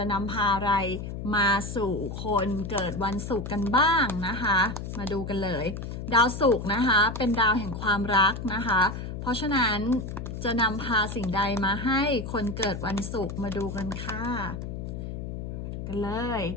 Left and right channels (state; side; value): noise; left; hum, 7 dB below the sound